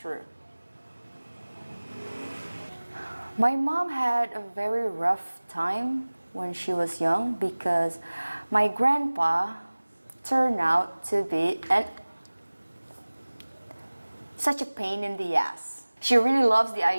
My mom had a very rough time when she was young because my grandpa turned out to be such a pain in the ass. She really loves the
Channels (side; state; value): both; inverted; correlation -1.00